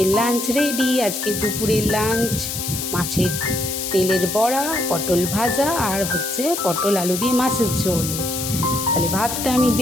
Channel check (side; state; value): left; noise; hiss, 4 dB below the sound